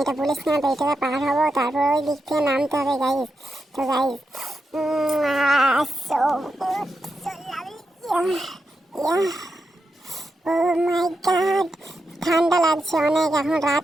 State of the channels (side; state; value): both; normal; correlation 0.86